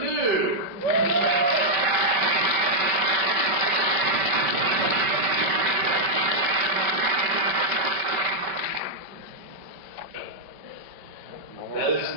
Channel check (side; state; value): left; late; 5.2 ms